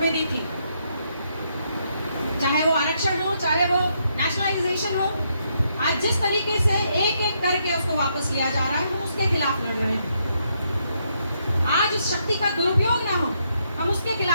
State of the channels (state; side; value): inverted; both; correlation -0.76